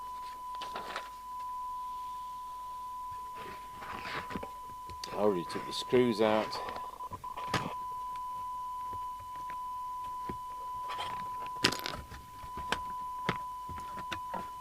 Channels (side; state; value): both; identical; correlation 1.00